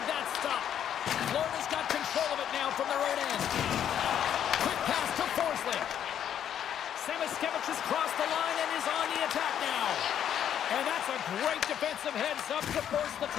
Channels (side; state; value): right; quieter; 9.7 dB